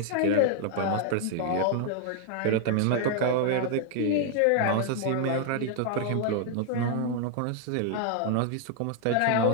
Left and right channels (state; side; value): different; both; correlation 0.00